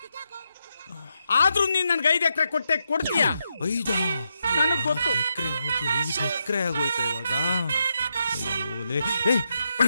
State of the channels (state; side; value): inverted; both; correlation -0.83